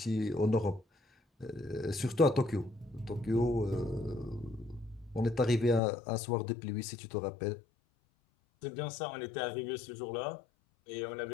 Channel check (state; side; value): drops out; right; at 5.8 s